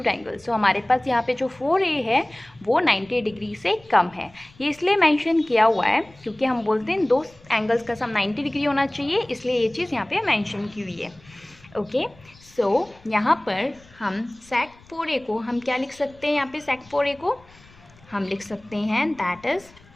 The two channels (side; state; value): left; noise; rumble, 26 dB below the sound